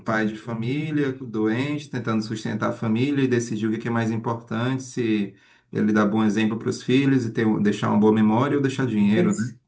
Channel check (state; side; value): identical; both; correlation 1.00